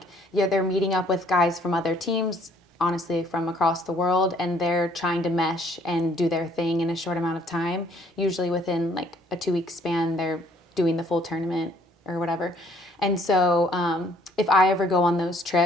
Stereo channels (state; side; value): normal; both; correlation 0.61